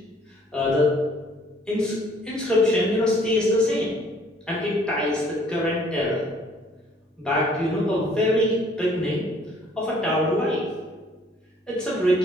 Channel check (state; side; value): normal; both; correlation 0.60